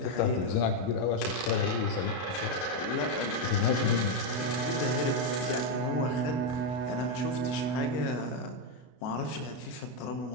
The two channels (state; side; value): late; right; 32 ms